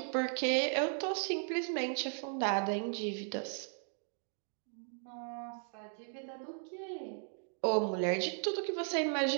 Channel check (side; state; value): left; silent; 53 dB below the other